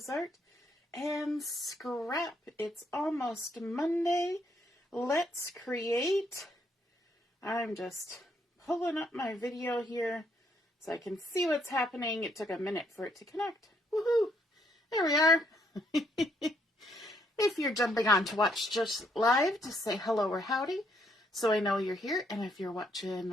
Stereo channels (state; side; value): normal; both; correlation 0.72